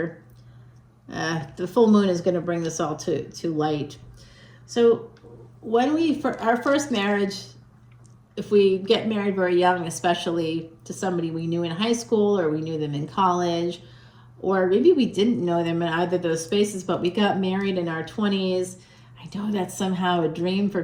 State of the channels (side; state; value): both; identical; correlation 1.00